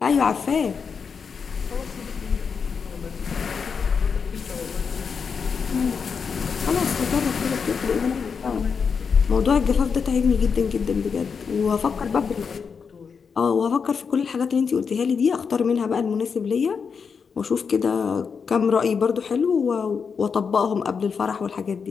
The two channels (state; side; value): quieter; right; 5.9 dB